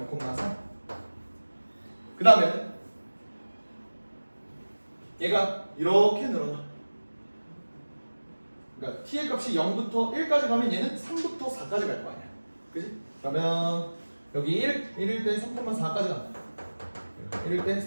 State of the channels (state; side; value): inverted; both; correlation -1.00